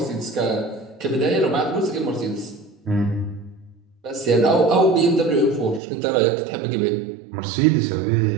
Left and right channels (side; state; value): left; drops out; at 5.8 s